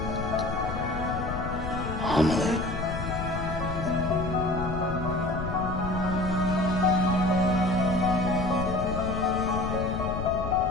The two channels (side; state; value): left; noise; rumble, 5 dB below the sound